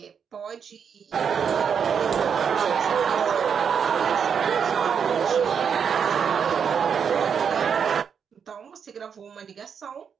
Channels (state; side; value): quieter; left; 7.0 dB